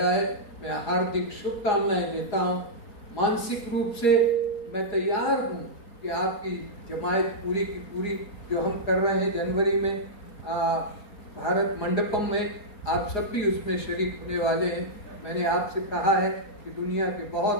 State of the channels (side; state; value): right; late; 4.8 ms